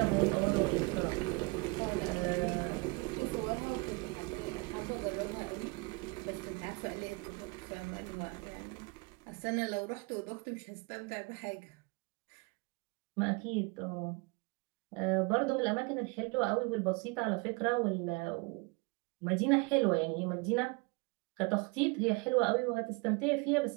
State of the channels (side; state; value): left; quieter; 28.0 dB